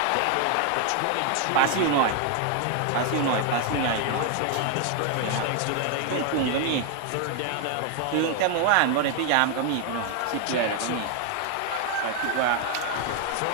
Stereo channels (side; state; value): both; different; correlation 0.00